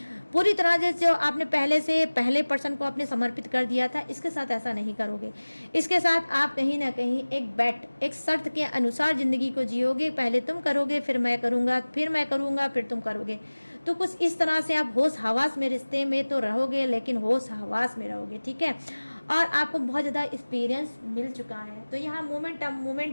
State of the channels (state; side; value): inverted; both; correlation -1.00